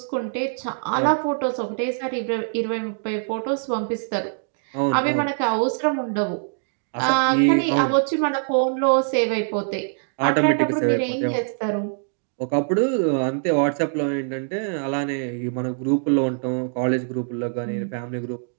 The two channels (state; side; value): silent; left; digital silence